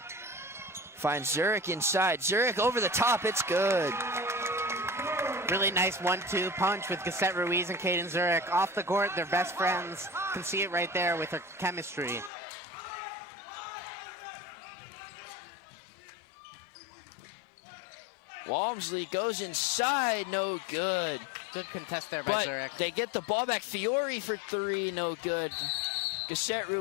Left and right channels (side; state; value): right; drops out; at 12.3 s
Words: Finds Zurich inside. Zurich over the top, it's good. Really nice 1-2 punch with Cassette Ruiz and Caden Zurich. Off the court, they're best friends. Can see it right there with their chemistry. Walmsley goes inside, no good. Good contest there by Zurich. They get the ball back. Fiore for 3, no good. Cassette